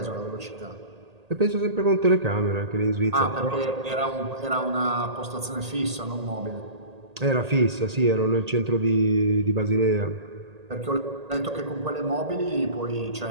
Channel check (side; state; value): left; late; 1.8 ms